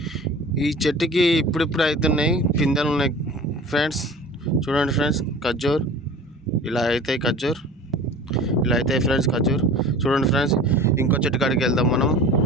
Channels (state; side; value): normal; both; correlation 0.40